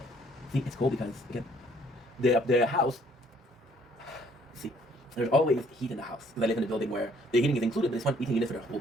See, it's cool because, again, the house, see, there's always heat in the house because I live in a building where the heating is included, but it's not heating unit for the whole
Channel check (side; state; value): both; normal; correlation 0.62